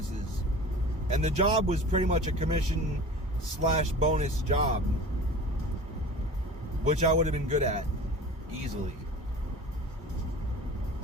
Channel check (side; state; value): both; normal; correlation 0.38